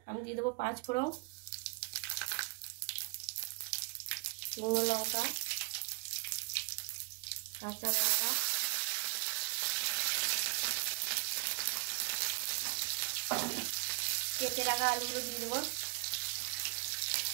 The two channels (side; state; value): left; quieter; 30.4 dB